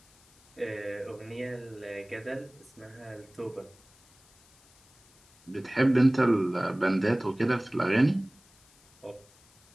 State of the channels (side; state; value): left; noise; hiss, 29 dB below the sound